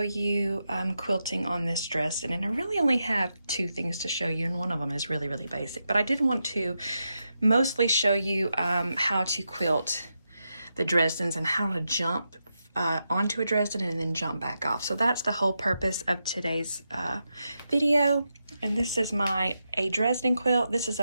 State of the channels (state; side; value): inverted; both; correlation -0.86